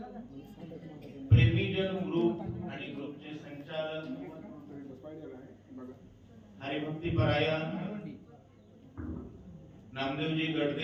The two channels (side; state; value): both; identical; correlation 1.00